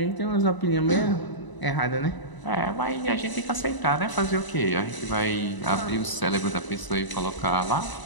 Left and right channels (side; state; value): right; late; 1.0 ms